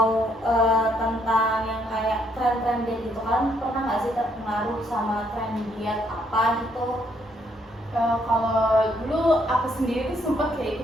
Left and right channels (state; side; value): normal; both; correlation 0.71